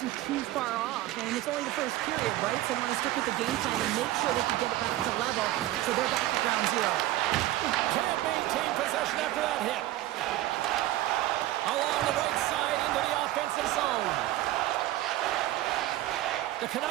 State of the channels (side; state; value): left; quieter; 15.5 dB